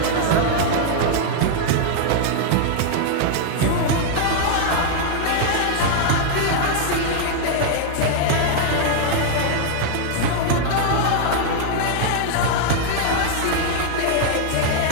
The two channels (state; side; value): different; both; correlation 0.00